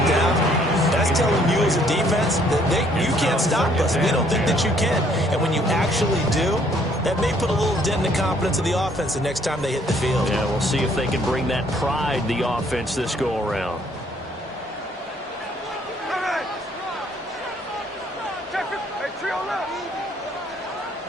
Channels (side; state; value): both; normal; correlation 0.64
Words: down, that's telling you as a defense that you can't stop us. We don't think that you can. And when you actually do, that may put a little dent in the confidence of the offense the next time they hit the field. Yeah, we'll see if they can bring that pride, the offense, this go-around.